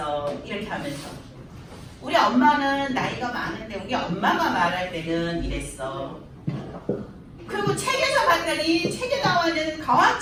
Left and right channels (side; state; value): both; identical; correlation 1.00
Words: 이렇게 하면서 우리 엄마는 나이가 많은데 우리 엄마가 말할 때는 이랬어. 그리고 책에서 봤더니 책에 나와있는 과학